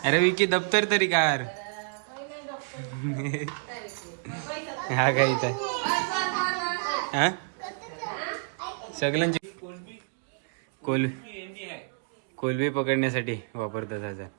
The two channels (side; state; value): left; silent; digital silence